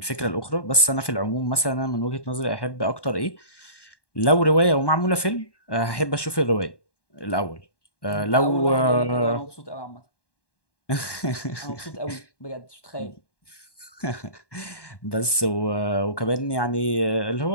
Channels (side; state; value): right; late; 1.1 ms